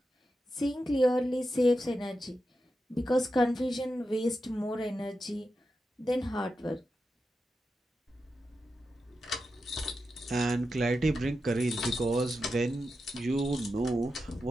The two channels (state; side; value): normal; both; correlation 0.89